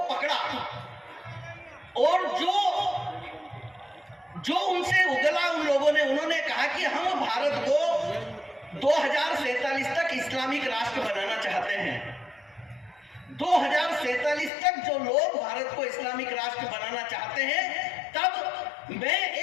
पकड़ा और जो उनसे उगला उन लोगों ने, उन्होंने कहा कि हम भारत को 2047 तक इस्लामिक राष्ट्र बनाना चाहते हैं। 2047 तक जो लोग भारत को इस्लामिक राष्ट्र बनाना चाहते हैं, तब मैं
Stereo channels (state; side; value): drops out; right; at 14.5 s